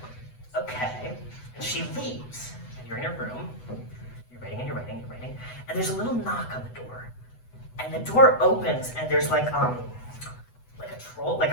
okay. And she leaves. You're in your room, you're writing, and there's a little knock on the door. And the door opens, and there's like a troll, like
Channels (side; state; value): right; late; 8.0 ms